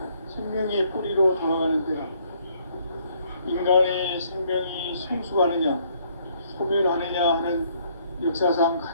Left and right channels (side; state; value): both; inverted; correlation -0.66